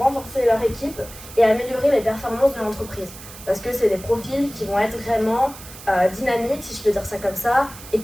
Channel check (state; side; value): noise; right; hiss, 16 dB below the sound